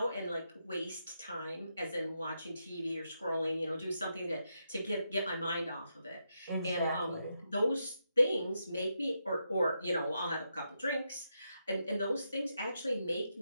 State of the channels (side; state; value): both; inverted; correlation -0.84